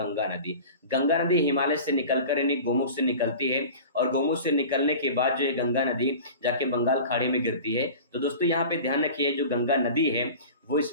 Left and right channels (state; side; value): inverted; both; correlation -0.37